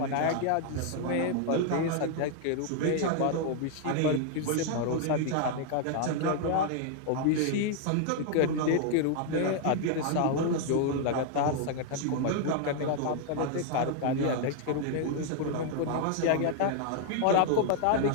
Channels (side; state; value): both; different; correlation 0.00